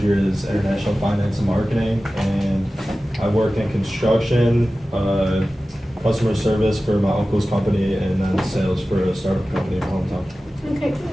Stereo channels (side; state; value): both; normal; correlation 0.95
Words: is international finance and marketing, and I work in construction, customer service for my uncle's company, and then sales for a startup company in my hometown. Okay,